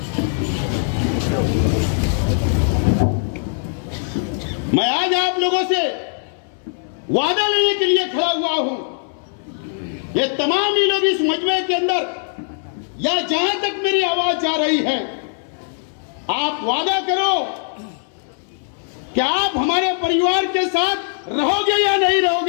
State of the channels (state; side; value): silent; right; 64 dB below the other